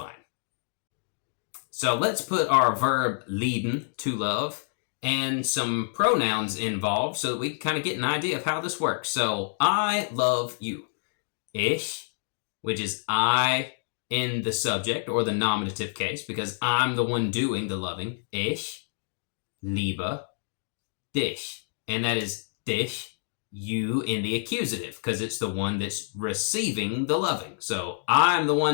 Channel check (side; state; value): right; silent; digital silence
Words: So let's put our verb lieben, to love, and some pronouns involved so that we can kind of get an idea of how this works. So I love you. Ich, which is I in the subject or the nominative case, because I'm the one doing the loving. Ich liebe dich. And that is dich, you in the accusative, because it's the one that's receiving the loving. So I'm the